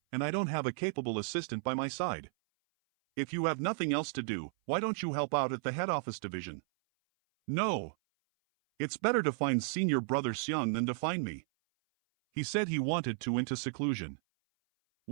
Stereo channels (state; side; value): silent; left; 55 dB below the other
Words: and I don't have a capable assistant by my side. If you have nothing else to do, why don't you help out at the head office division? No. It's better to find Senior Brother Xiang than to find me. He said he wanted to into seclusion.